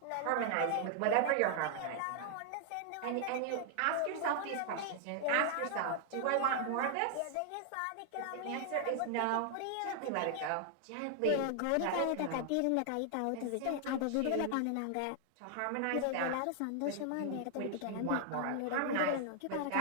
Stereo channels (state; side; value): different; both; correlation 0.00